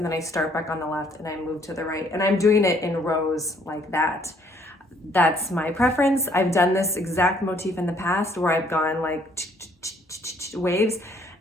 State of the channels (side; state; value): both; normal; correlation 0.64